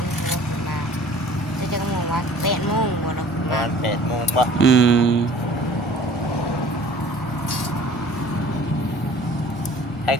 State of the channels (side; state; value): both; normal; correlation 0.49